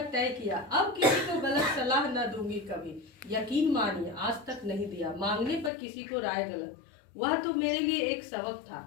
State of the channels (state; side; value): drops out; right; at 5.7 s